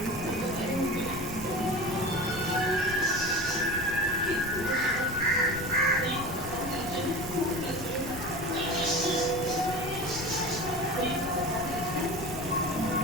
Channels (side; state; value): left; noise; rumble, 11 dB below the sound